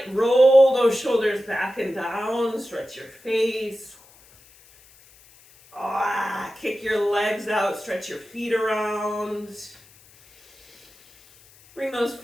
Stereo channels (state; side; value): noise; left; hiss, 26 dB below the sound